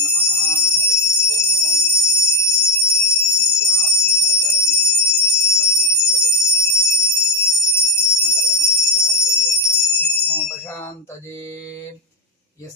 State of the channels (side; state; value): both; normal; correlation 0.08